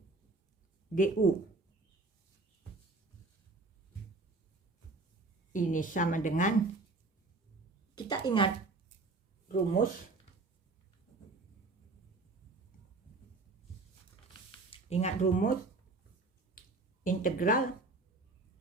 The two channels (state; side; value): quieter; left; 3.4 dB